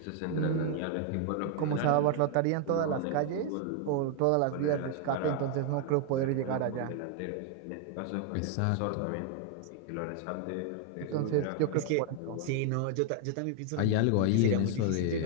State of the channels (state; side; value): different; both; correlation 0.00